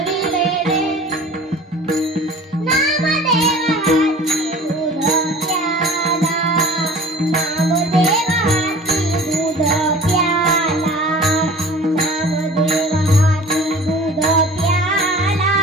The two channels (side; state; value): both; normal; correlation 0.43